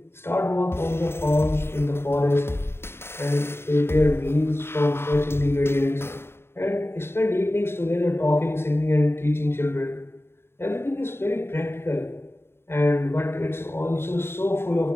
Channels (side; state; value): right; late; 0.11 ms